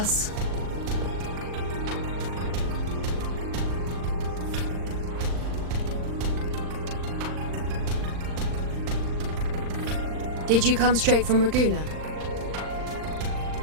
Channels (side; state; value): left; late; 39 ms